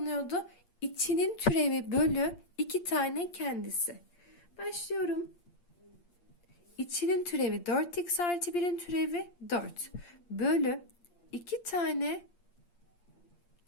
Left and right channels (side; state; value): right; late; 8.6 ms